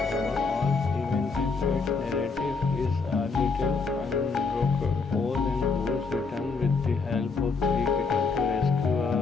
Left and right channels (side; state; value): right; quieter; 4.5 dB